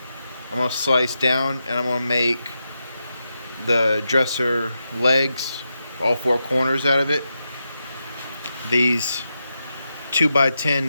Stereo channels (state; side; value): inverted; both; correlation -0.87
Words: I'm going to slice down and I'm going to make the dresser legs, all four corners out of it. These